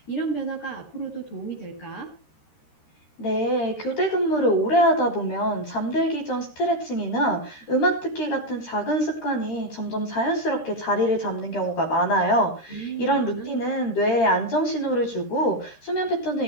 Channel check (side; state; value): right; late; 13 ms